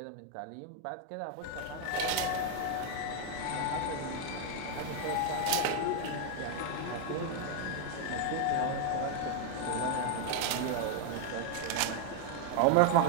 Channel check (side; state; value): both; different; correlation 0.01